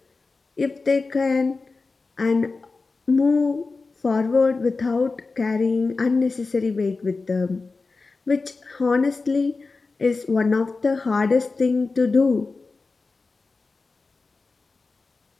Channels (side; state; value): right; quieter; 4.0 dB